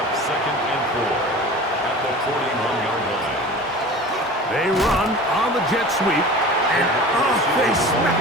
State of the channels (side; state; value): both; normal; correlation 0.38